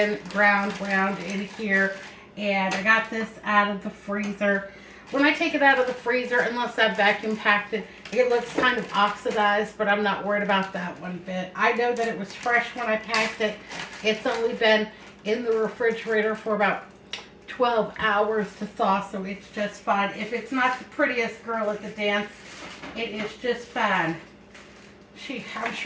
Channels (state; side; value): identical; both; correlation 1.00